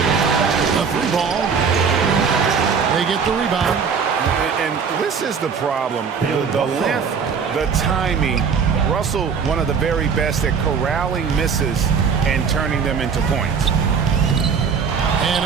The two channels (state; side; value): quieter; left; 6.1 dB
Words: The 3 ball. They get the rebound. And this is the problem. The length, the timing. Russell, one of the very best at corralling misses and turning them into points. And